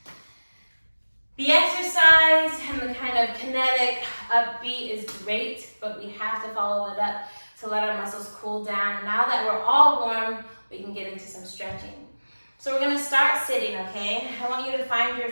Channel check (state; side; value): inverted; both; correlation -1.00